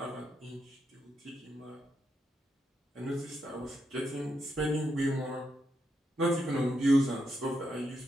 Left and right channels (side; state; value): both; normal; correlation 0.82